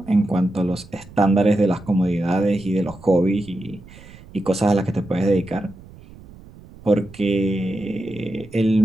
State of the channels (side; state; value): right; noise; rumble, 20 dB below the sound